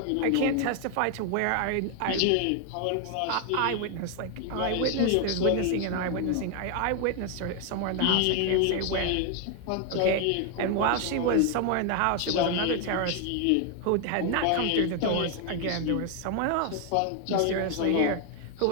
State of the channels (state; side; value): different; both; correlation 0.00